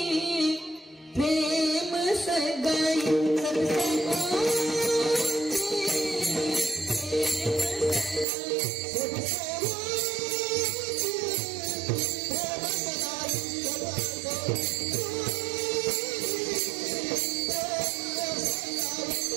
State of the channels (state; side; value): drops out; left; at 8.2 s